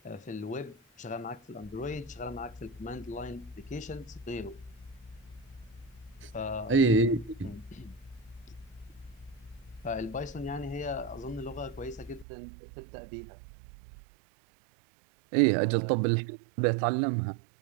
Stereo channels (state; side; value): drops out; left; at 12.2 s